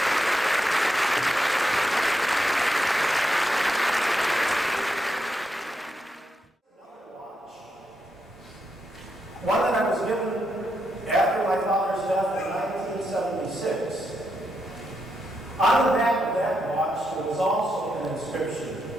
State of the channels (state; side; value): normal; both; correlation 0.82